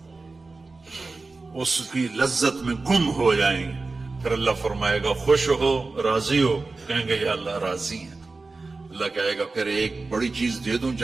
اس کی لذت میں گم ہو جائیں گے. پھر اللہ فرمائے گا خوش ہو راضی ہو؟ کہیں گے یا اللہ راضی ہیں. اللہ کہے گا پھر ایک بڑی چیز دے دوں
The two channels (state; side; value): quieter; left; 3.7 dB